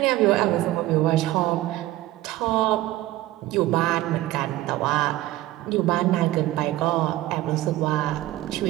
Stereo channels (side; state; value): left; quieter; 16.2 dB